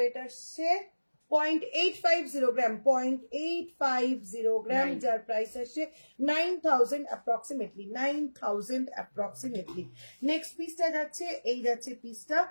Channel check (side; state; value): both; inverted; correlation -1.00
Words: আসছে 0.850 গ্রাম, 0.850 গ্রাম, যার প্রাইস আসছে 9,000 অ্যাপ্রক্সিমেটলি, 9,000 অ্যাপ্রক্সিমেটলি। নেক্সট পিসটা যাচ্ছে, এই যাচ্ছে পিসটা,